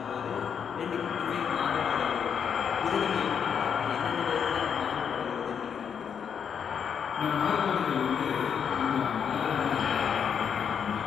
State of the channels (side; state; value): right; quieter; 7.4 dB